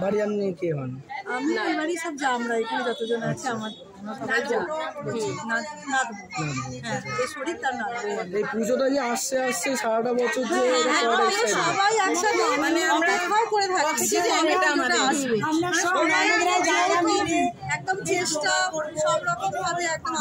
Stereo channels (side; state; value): both; identical; correlation 1.00